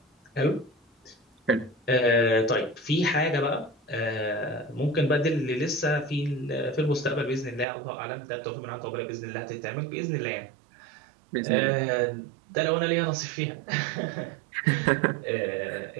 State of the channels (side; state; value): left; drops out; at 7.7 s